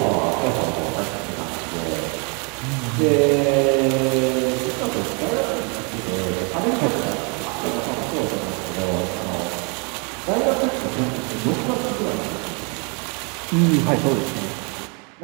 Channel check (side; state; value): left; quieter; 34.6 dB